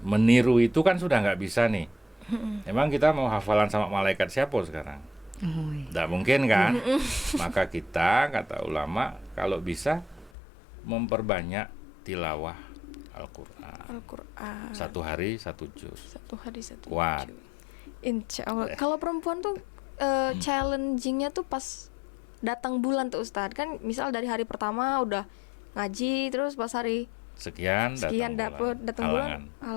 itu kan sudah nggak bisa nih. Emang kita mau hafalan sama malaikat siapa sekarang? Nggak mungkin kan? Maka kita, kata ulama, kalau bisa memperbanyak tilawah Al-Quran. Al-Quran. 1 hari 1 juz. 1 hari 1 Kuat. juz. Insya Allah. Kalau perempuan tuh challengingnya tuh pas datang bulan tuh Ustadz. Kan misal dari hari pertama udah ngaji, terus pas hari Sekian dapet datang bulan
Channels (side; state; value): right; drops out; at 10.3 s